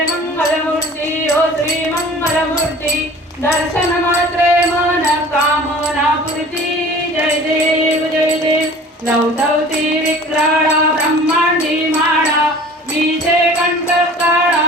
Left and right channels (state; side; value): normal; both; correlation 0.45